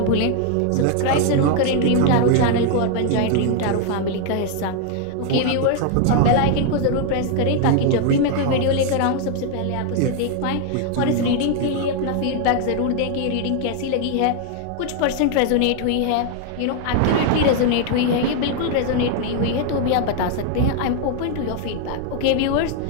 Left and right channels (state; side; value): different; both; correlation 0.00